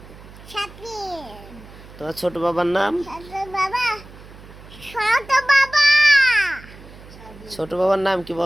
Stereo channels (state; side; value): noise; right; hum, 19 dB below the sound